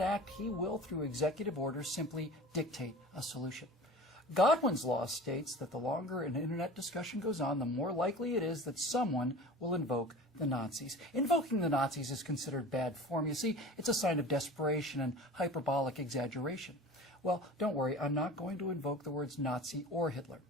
act, he will, through executive order, simply dictate a solution. Godwin's law states that the longer an internet discussion goes on, the more likely it is that someone will invoke the Nazis. Invoking the Nazis is considered bad form. You see, it's a sign of desperation and hyperbolic exaggeration. Well, don't worry, I'm not going to invoke the words Nazi or Hitler.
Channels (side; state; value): both; normal; correlation 0.38